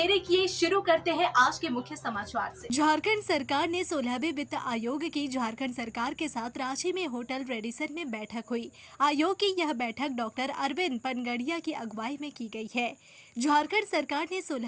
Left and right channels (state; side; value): identical; both; correlation 1.00